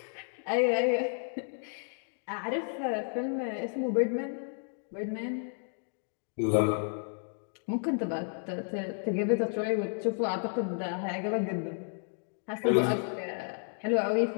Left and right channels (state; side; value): silent; right; 56 dB below the other